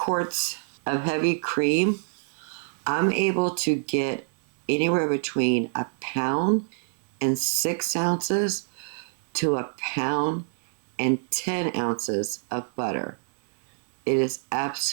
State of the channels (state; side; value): silent; left; 61 dB below the other